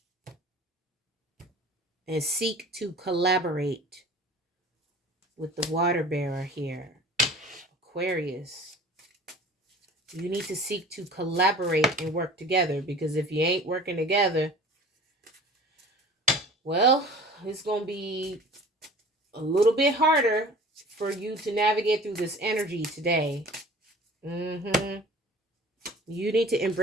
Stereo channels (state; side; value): normal; both; correlation 0.44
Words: and seek to collaborate with the water bearer here. Aquarius. You need to seek to collaborate and work together, because if you ain't working together, well, it's going to be a little bit harder for you to navigate through this energy today. You need to